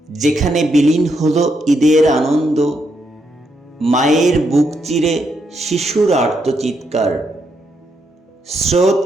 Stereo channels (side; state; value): both; normal; correlation 0.79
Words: যেখানে বিলীন হলো ঈদের আনন্দ, মায়ের বুক চিরে শিশুর আর্তচিৎকার, স্রোত